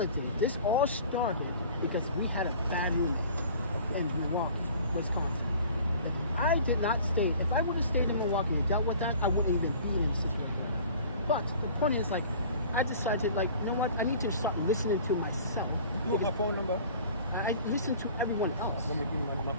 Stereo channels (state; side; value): inverted; both; correlation -0.46